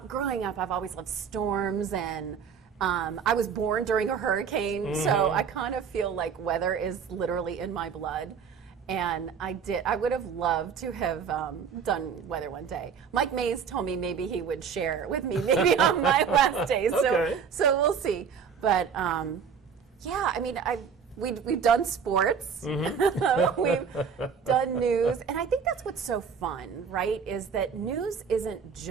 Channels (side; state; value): left; quieter; 6.6 dB